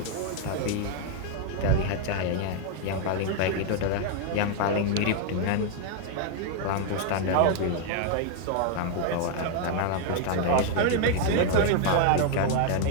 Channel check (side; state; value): both; different; correlation 0.01